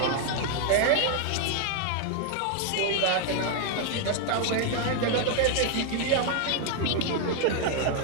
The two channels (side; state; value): both; different; correlation 0.00